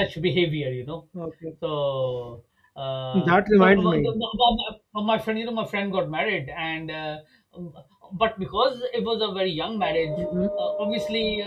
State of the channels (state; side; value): identical; both; correlation 1.00